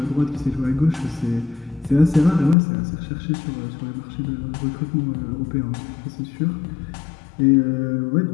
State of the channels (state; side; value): drops out; right; at 2.6 s